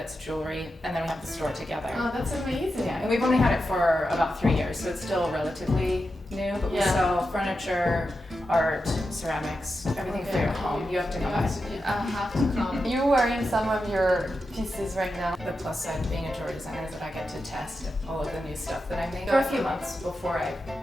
jewelry, and then we have the store together. Oh, that's amazing. Yeah, and we've only had it for about 3 years, so it's still relatively new, but we Yeah. sell furniture, art, ceramics, everything for your home. You have to come by. I have to come. You're wearing some of your pieces right now. The plus side of being a jewelry designer is that I get to test all of the new stuff that I make for a few months before I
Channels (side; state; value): both; normal; correlation 0.89